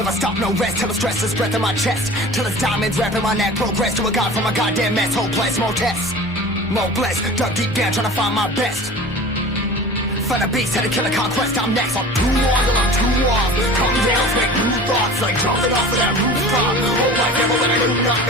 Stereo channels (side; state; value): both; normal; correlation 0.39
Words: stop, no rest. Till the stress is breath in my chest. Till it's diamonds wrapping my neck. Progress to a god from a goddamn mess. Hopeless, more tests, more blessed. Dug deep down, trying to find my best. Find a beast, had to kill a conquest. I'm next. I'm too on till I'm too off. Come down to make new thoughts, like jumping off of that rooftop. Whole life never when I do nothing